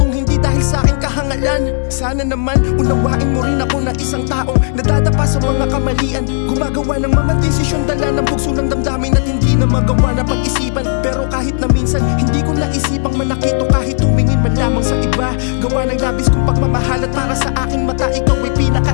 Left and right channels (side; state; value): right; silent; digital silence